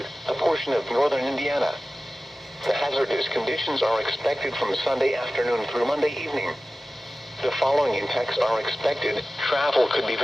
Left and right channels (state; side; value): normal; both; correlation 0.96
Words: a portion of northern Indiana. The hazardous conditions are expected from Sunday afternoon through Monday evening. The following impacts are expected. Travel could be